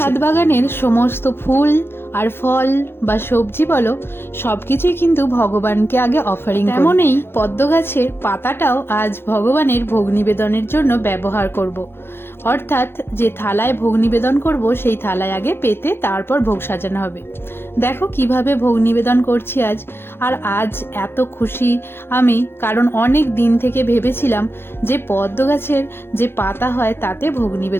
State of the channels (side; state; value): right; late; 0.11 ms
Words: বাগানের সমস্ত ফুল আর ফল বা সবজি বলো, সবকিছুই কিন্তু ভগবানকে আগে অফারিং। তেমনই পদ্ম গাছের পাতাটাও আজ ভগবানের ভোগ নিবেদনের জন্য ব্যবহার করব। অর্থাৎ যে থালায় ভোগ নিবেদন করব সেই থালায় আগে পেতে তারপর ভোগ সাজানো হবে। দেখো কিভাবে ভোগ নিবেদন করছি আজ। আর আজ এত খুশি আমি, কারণ অনেক দিন থেকে ভেবেছিলাম যে পদ্ম গাছের যে পাতা হয় তাতে ভোগ